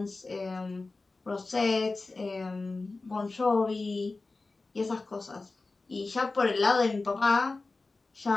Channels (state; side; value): quieter; right; 3.5 dB